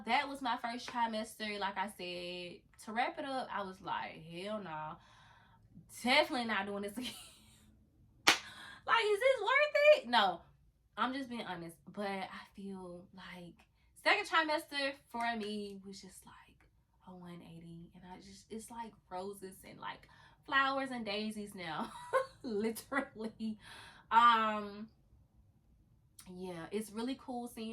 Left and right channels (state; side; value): identical; both; correlation 1.00